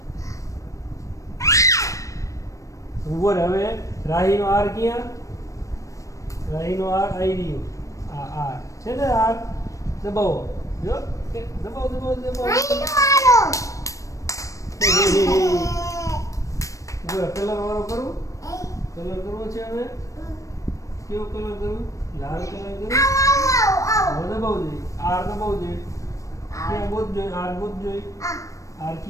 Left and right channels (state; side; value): late; right; 0.16 ms